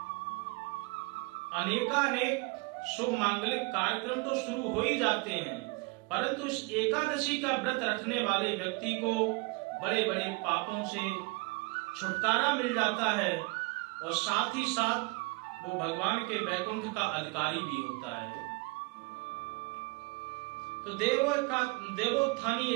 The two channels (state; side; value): quieter; left; 27.2 dB